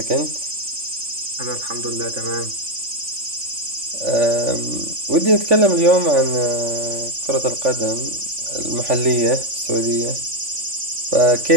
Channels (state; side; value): late; left; 3.5 ms